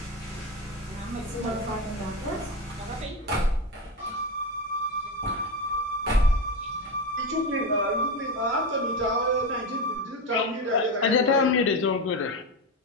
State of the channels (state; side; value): normal; both; correlation 0.17